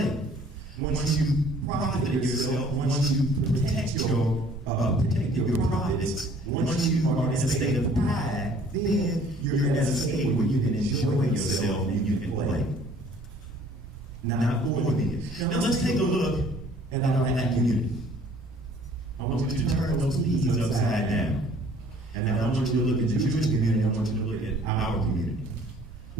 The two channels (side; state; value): both; normal; correlation 0.55